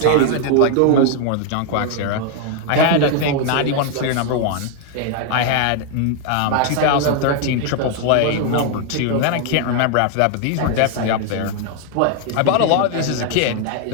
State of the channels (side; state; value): both; different; correlation 0.00